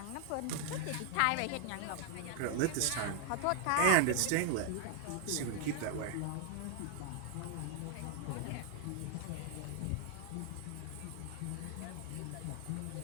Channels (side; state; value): both; different; correlation 0.00